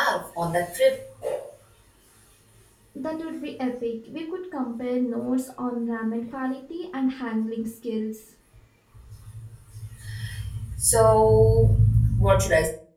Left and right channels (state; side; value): identical; both; correlation 1.00